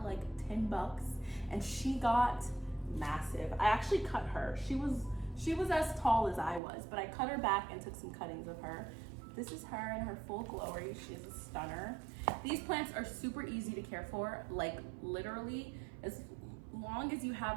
10 bucks, and she got massive. I actually cut her. She was as tall as I was, but I cut her back and took some cuttings of her. This is her in her full glory. She's a stunner. These plants are super easy to care for. Like literally, as long as you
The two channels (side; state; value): left; drops out; at 6.6 s